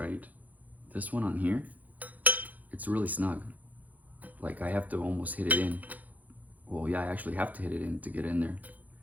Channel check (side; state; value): left; late; 0.079 ms